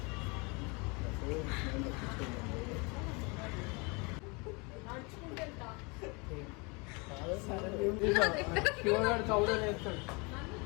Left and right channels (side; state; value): right; quieter; 29.6 dB